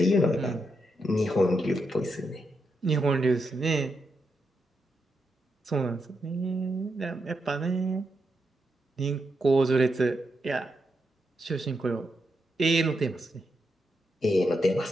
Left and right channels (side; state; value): both; normal; correlation 0.84